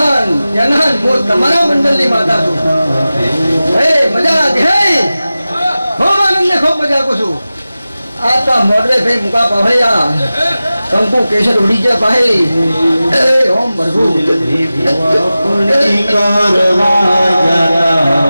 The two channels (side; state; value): both; inverted; correlation -0.95